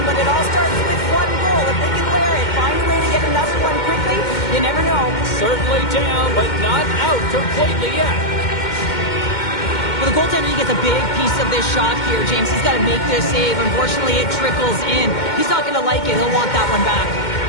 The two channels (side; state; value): right; late; 2.1 ms